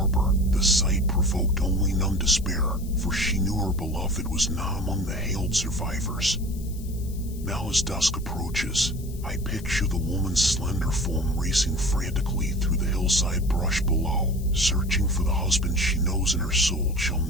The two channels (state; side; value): noise; left; hiss, 20 dB below the sound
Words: the sight provoked only numb despair, for she knew her beloved was not among the hailed survivors. Now as dusk approaches, I picture the woman's slender form racing frantically through the hillside brush below, searching for the husband she knows in her soul shall